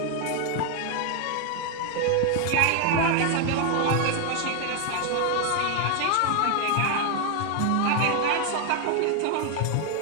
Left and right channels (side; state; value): both; different; correlation 0.01